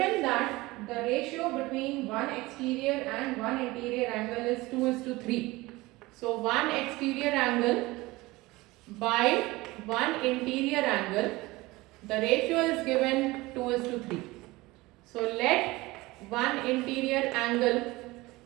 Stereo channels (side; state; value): left; quieter; 20.7 dB